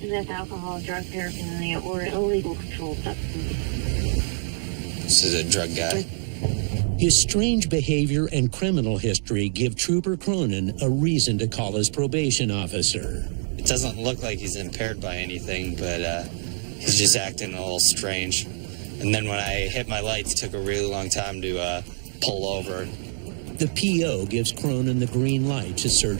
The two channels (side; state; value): left; silent; 56 dB below the other